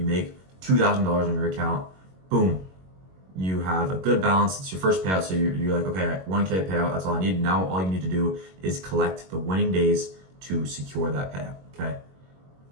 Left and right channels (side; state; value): left; late; 21 ms